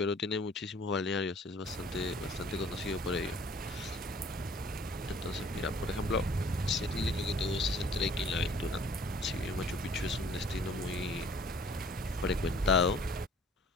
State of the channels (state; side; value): normal; both; correlation 0.55